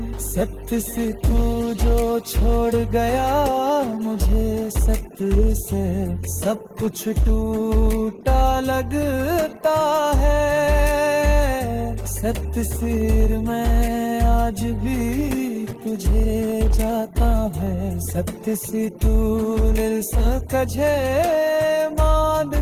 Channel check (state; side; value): identical; both; correlation 1.00